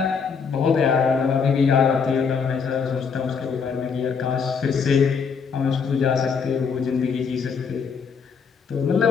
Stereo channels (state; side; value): quieter; right; 5.9 dB